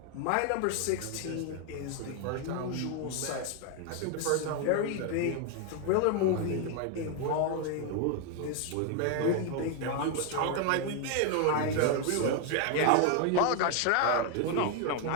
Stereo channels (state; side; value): different; both; correlation 0.01